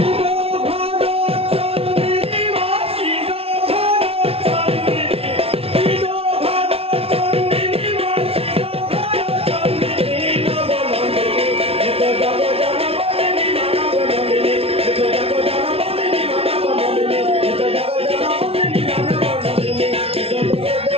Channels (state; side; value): late; left; 0.28 ms